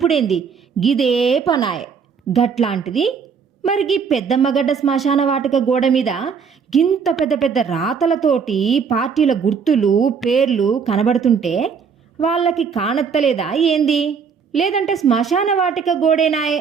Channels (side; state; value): left; quieter; 6.2 dB